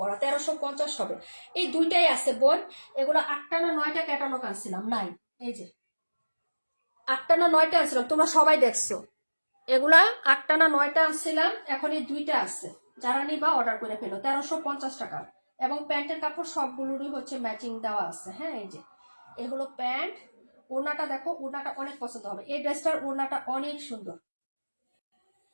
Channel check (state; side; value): inverted; both; correlation -1.00